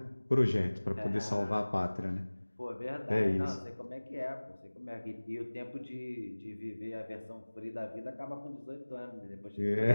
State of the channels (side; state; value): both; inverted; correlation -1.00